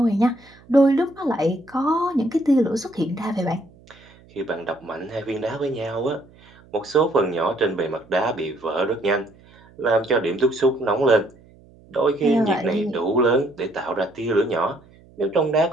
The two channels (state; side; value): noise; right; hum, 26 dB below the sound